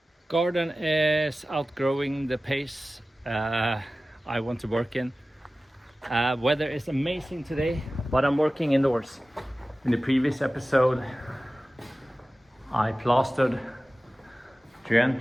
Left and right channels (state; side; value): normal; both; correlation 0.96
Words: Garden is outgrowing the pace I want to work in. Weather is amazing today, but I'm working indoors. In the previous episode, I plastered the